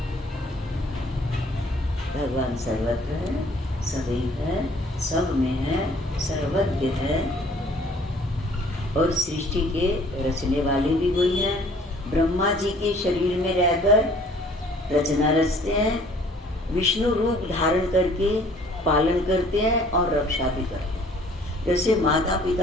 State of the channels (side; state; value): both; normal; correlation 0.56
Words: भगवान सर्वत्र है, सदैव है, सब में है, सर्वज्ञ है। और सृष्टि के रचने वाले भी वही हैं। ब्रह्मा जी के शरीर में रहकर रचना रचते हैं, विष्णु रूप धारण करके पालन करते हैं और रक्षा भी करते हैं। जैसे माता